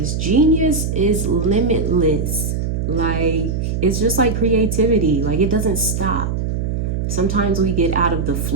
Genius is limitless. Like, it's just like creativity. Like, it doesn't stop. Sometimes we get out of the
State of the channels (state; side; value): noise; right; hum, 1 dB below the sound